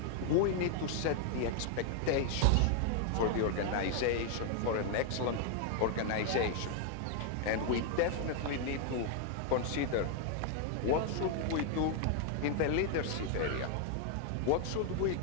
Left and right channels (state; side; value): different; both; correlation 0.00